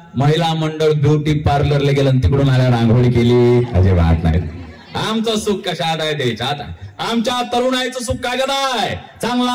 महिला मंडळ ब्युटी पार्लरला गेलं तिकडून आल्यावर आंघोळी केली? अजिबात नाही. आमचं सुख कशात आहे? देशात. आमच्या तरुणाईचं सुख काय आहे?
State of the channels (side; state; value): both; identical; correlation 1.00